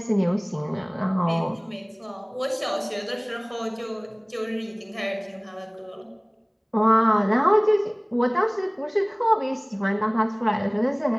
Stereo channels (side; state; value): both; identical; correlation 1.00